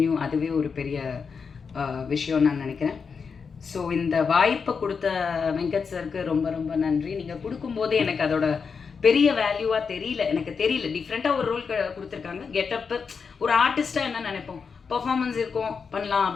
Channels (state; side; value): quieter; right; 5.7 dB